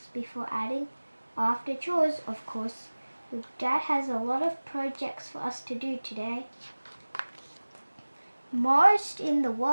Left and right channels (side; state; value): both; inverted; correlation -1.00